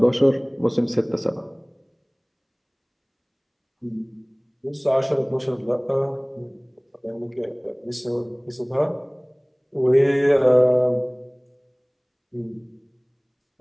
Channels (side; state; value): both; identical; correlation 1.00